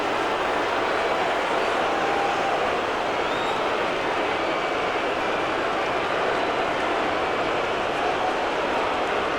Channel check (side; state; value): left; noise; rumble, 22 dB below the sound